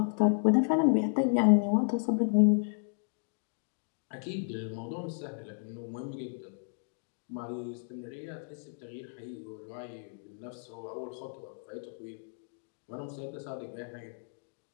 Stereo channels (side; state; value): right; silent; digital silence